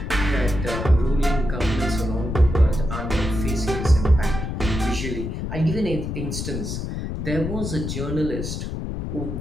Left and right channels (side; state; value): left; noise; rumble, 4 dB below the sound